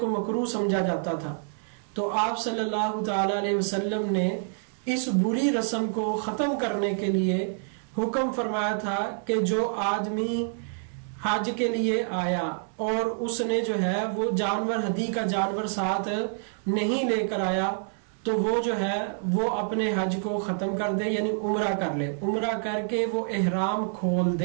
مکروہ سمجھا جاتا تھا، تو آپ صلی اللہ تعالی علیہ وسلم نے اس بری رسم کو ختم کرنے کے لیے حکم فرمایا تھا کہ جو آدمی حج کے لیے آیا اور اس نے جو ہے وہ جانور، ہدی کا جانور ساتھ نہیں لے کر آیا، تو وہ جو ہے وہ اپنے حج کو ختم کر دے، یعنی عمرہ کر لے، عمرہ کر کے وہ احرام کھول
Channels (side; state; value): left; silent; digital silence